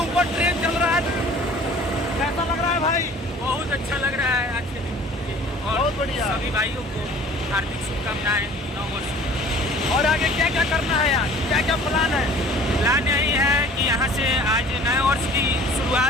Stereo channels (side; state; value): both; normal; correlation 0.48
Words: ट्रेन चल रहा है। कैसा लग रहा है भाई? बहुत अच्छा लग रहा है आज के दिन। और बहुत बढ़िया। सभी भाइयों को हार्दिक शुभकामनाएं नव वर्ष। और आगे क्या क्या करना है यार? क्या क्या प्लान है? प्लान यही है कि यहाँ से आज नए वर्ष की